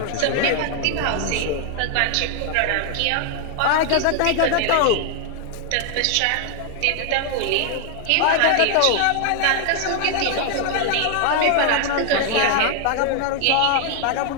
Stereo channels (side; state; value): both; different; correlation 0.00